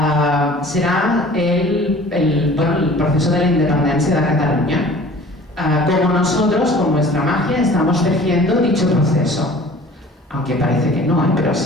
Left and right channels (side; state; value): both; normal; correlation 0.47